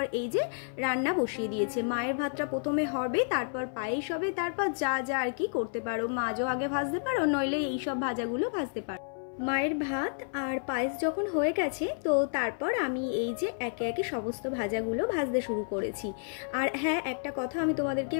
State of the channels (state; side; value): silent; right; 57 dB below the other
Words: এই যে রান্না বসিয়ে দিয়েছে। মায়ের ভাতটা প্রথমে হবে, তারপর পায়েস হবে, তারপর যা যা আর কি করতে পারো, মাছও আগে ভাজতে পারো, নইলে এইসব ভাজাগুলো ভাজতে পারো। মায়ের ভাত আর পায়েস যখন হয়ে গেছে, তো তারপর আমি এই যে একে একে সমস্ত ভাজাগুলো ভাজতে শুরু করেছি। আর হ্যাঁ, একটা কথা আমি তোমাদেরকে